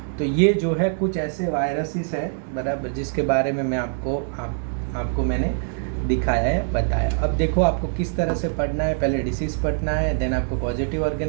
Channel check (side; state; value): left; silent; digital silence